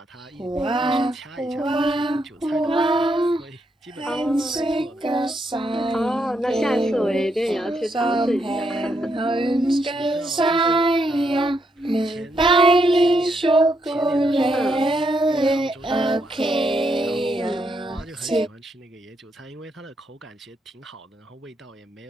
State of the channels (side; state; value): both; normal; correlation 0.78